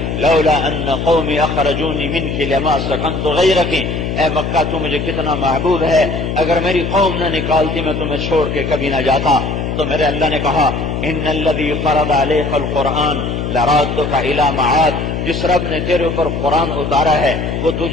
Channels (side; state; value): left; noise; hum, 3 dB below the sound